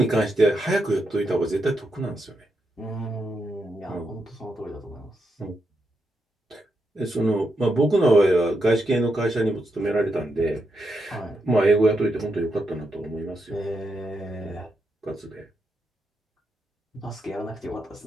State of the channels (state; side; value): normal; both; correlation 0.83